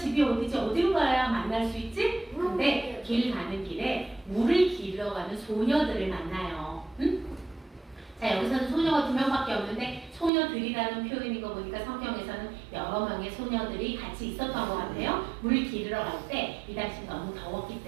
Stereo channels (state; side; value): drops out; left; at 10.3 s